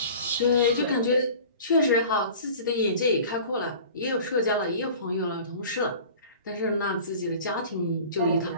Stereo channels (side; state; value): both; inverted; correlation -0.42